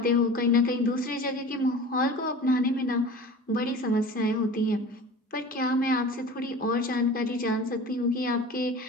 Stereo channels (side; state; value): both; normal; correlation 0.38